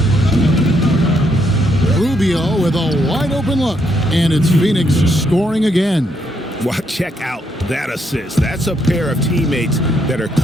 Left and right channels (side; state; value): both; normal; correlation 0.75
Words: Rubio with a wide open look. And it's Phoenix scoring again. Well, check out that assist. That's a pair of teammates that are